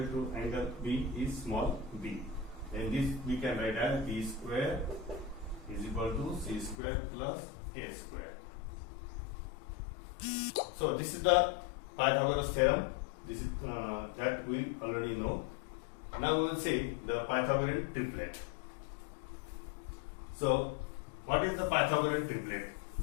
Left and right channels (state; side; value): drops out; right; at 6.8 s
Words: to angle B is small b, then this we can write as B square is equal to C square plus A square. So this is the Pythagoras theorem. This is that we already know. Now we will see the Pythagorean triplet. So, what is the Pythagorean triplet?